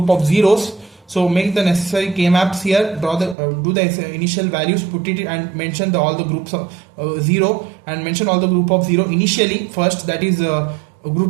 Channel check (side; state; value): left; drops out; at 3.4 s